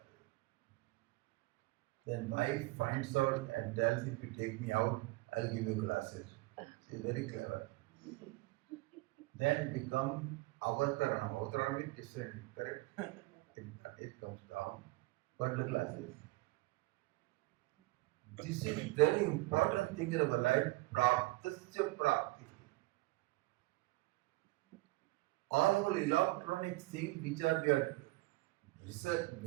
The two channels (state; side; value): quieter; left; 21.9 dB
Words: Then wife finds out and tells, if you take me out, I'll give you glasses. She's very clever. Then become avataranam. Avataranam is descending, correct? It comes down. But the glasses. This is very important thing in our life. Praptasya prapti. All our electronic things which are we are research,